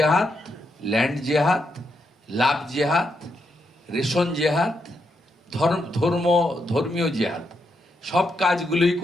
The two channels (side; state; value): both; normal; correlation 0.81